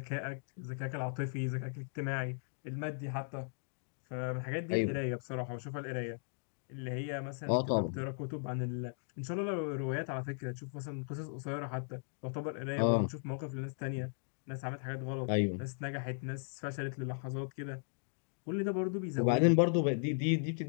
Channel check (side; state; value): right; silent; digital silence